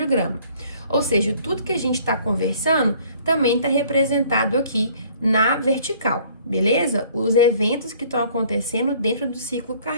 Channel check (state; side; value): inverted; both; correlation -0.56